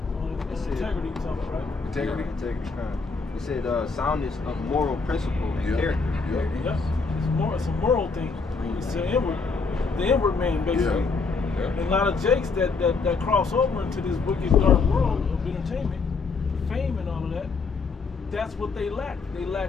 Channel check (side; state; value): right; quieter; 4.5 dB